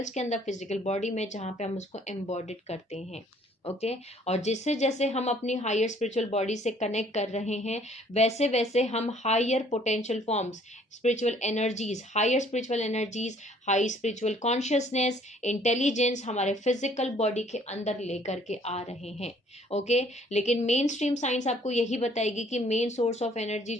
के अंदर, फिजिकल बॉडी में, जहाँ पे हम उसको एम्बॉडिड करते हैं। ओके, और जिससे जैसे हम अपनी हायर स्पिरिचुअल बॉडी से कनेक्ट कर रहे हैं, वैसे वैसे हम higher potential forms, spiritual energies, higher spiritual energies, high spiritual consciousness, intelligence हमारे फिजिकल बॉडी के अंदर लेकर के आ रहे हैं। ओके, लेकिन मेन स्ट्रीम साइंस आपको यही बताएगी कि मेन सोर्स ऑफ एनर्जी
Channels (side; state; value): both; normal; correlation 0.59